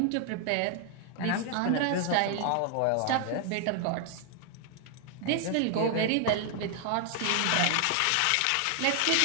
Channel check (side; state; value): both; different; correlation 0.00